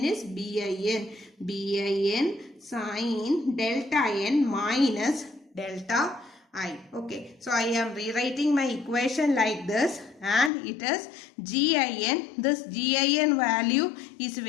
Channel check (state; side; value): drops out; right; at 10.5 s